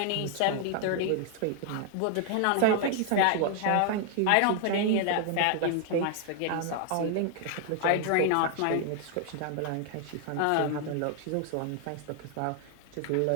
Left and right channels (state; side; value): different; both; correlation 0.00